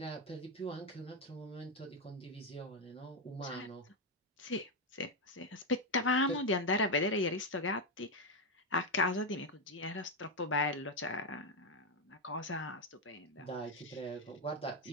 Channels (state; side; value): normal; both; correlation 0.06